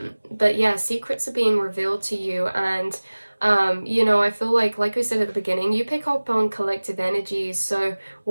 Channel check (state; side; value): inverted; both; correlation -1.00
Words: yeah, secrets are being revealed to you, and I feel like we said at the beginning, you pick up on collective energies. So